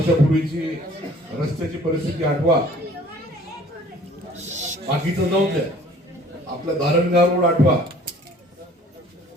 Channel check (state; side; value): normal; both; correlation 0.53